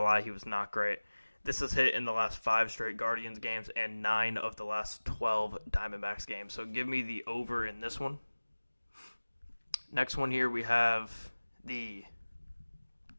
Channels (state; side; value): inverted; both; correlation -1.00